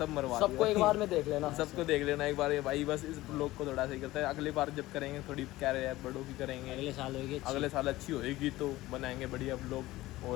मरवा सबको एक बार में देख लेना सबको देख लेना एक बार भाई बस इस ब्लॉग को थोड़ा सही करता है अगली बार जब करेंगे थोड़ी क्या रहे बड़ों की करेंगे अगले साल अच्छी होएगी तो बनाएंगे बढ़िया ब्लॉग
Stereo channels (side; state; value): right; quieter; 17.6 dB